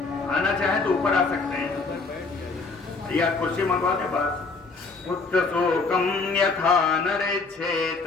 आना चाहे तो ऊपर आ सकते हैं या कुर्सी मंगवा दे बस। पुत्र शोकम यथा नरिक्षेत,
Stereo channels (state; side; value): quieter; right; 4.1 dB